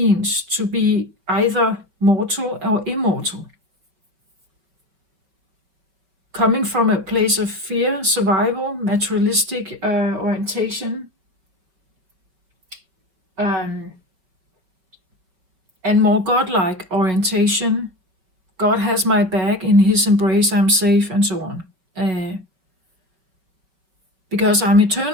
to be either mortal or immortal? Coming from a place of fear, survival, materialistic orientation, and more godlike orientation. God has my back, in his embrace I'm safe, and so on. Because I'm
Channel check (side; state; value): left; late; 5.4 ms